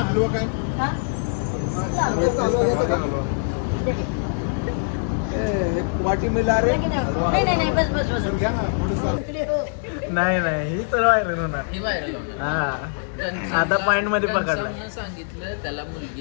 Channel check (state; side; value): silent; right; digital silence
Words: हलवा काय हा? वाटी मिला रे नाही नाही नाही बस बस बस. घ्या ना थोडंसं. इकडे हो. नाही नाही ही तर व्हायरल होणार. हे व्हायरल होणार. हा आता पॉइंट मध्ये पकडला. घनश्यामनं सांगितलं त्याला